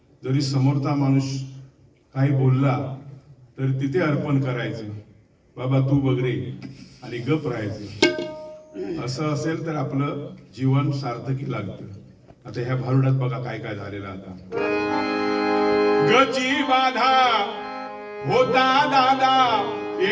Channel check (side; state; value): both; identical; correlation 1.00